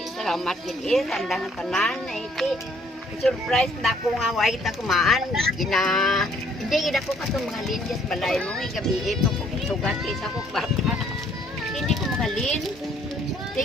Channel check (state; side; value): normal; both; correlation 0.63